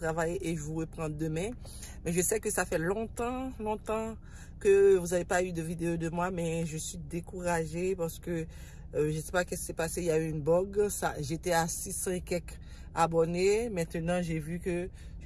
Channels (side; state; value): both; identical; correlation 1.00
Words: et je vous reprends demain. Mais je sais que ça fait longtemps que vous n'avez pas eu de vidéo de moi, mais je suis découragée parce que je ne sais pas qu'est-ce qui s'est passé. Il y a eu une bug. J'étais à 600 et quelques abonnés. Maintenant, j'ai vu que